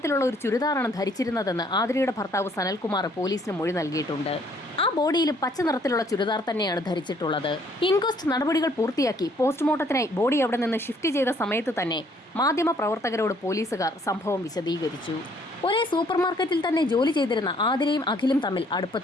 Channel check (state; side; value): normal; both; correlation 0.63